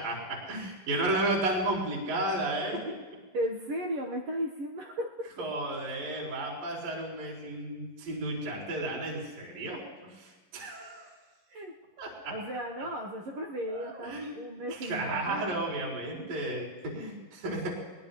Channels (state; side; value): late; left; 11 ms